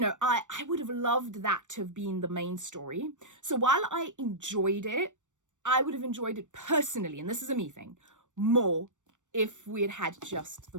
I would have loved that to have been the main story. So while I enjoyed it, I would have enjoyed it personally, and this is a me thing, more if we had had just the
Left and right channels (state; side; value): late; left; 0.85 ms